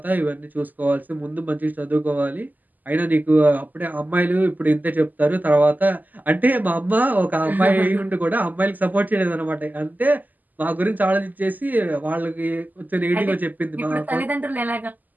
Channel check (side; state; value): left; late; 0.083 ms